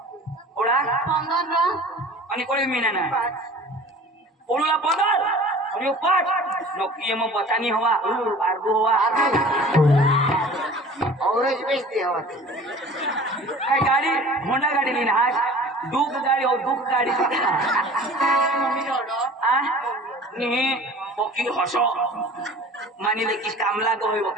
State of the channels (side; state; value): both; normal; correlation 0.44